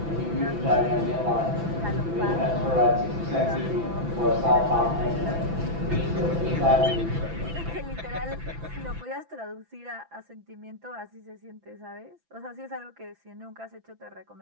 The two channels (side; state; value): left; late; 6.0 ms